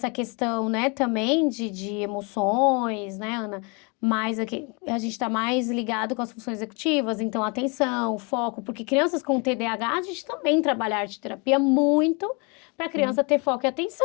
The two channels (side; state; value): right; quieter; 31.8 dB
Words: questão, né, também de emoções, né, Ana? Mas aqui, a gente está mais ligado com as funções executivas, então atenção, foco, porque crianças com TDAH, a gente também trabalha arte terapia muito para a Sim, criança ter foco e